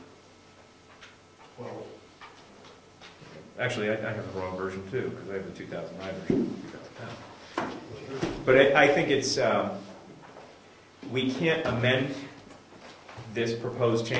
Well, actually, I have the wrong version too, because I have the 2009 version. 2010. But I think it's, we can't amend this proposed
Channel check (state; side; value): identical; both; correlation 1.00